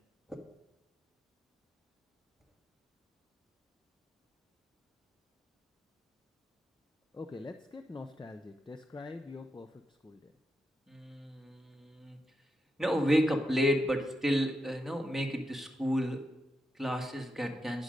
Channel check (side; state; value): both; normal; correlation 0.85